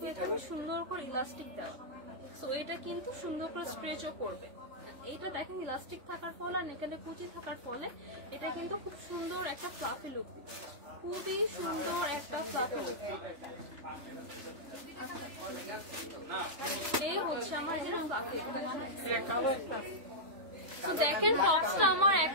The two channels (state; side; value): late; left; 3.5 ms